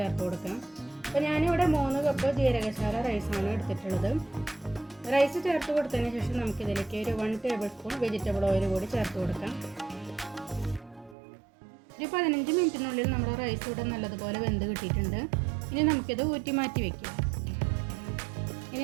കൊടുക്കാം. അപ്പോൾ ഞാനിവിടെ 3 കപ്പ് ജീരകശാല റൈസാണ് എടുത്തിട്ടുള്ളത്. റൈസ് ചേർത്ത് കൊടുത്തതിന് ശേഷം നമുക്കിതിലേക്ക് ഒരു 1 ടേബിൾ സ്പൂൺ വെജിറ്റബിൾ ഓയിൽ കൂടി ചേർത്ത് കൊടുക്കാം. ഒരു 15 മിനിറ്റിനുള്ളിൽ നമ്മുടെ റൈസ് ഇവിടെ നല്ലതുപോലെ വെന്ത് കിട്ടിയിട്ടുണ്ട്. ഇനി നമുക്കിത് ഊറ്റി മാറ്റി വയ്ക്കാം. ഇനി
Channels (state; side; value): drops out; left; at 11.2 s